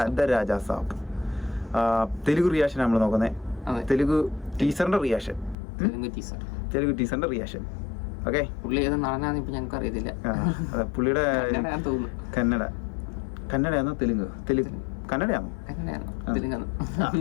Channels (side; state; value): right; drops out; at 5.6 s